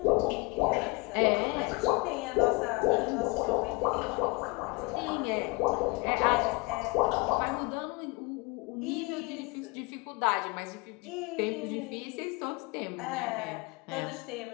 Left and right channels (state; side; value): quieter; right; 27.1 dB